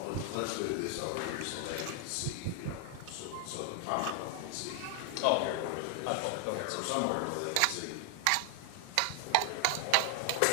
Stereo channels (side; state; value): both; different; correlation 0.00